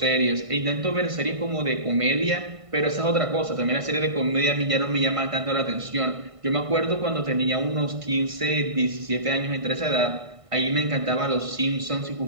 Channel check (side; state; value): left; late; 1.5 ms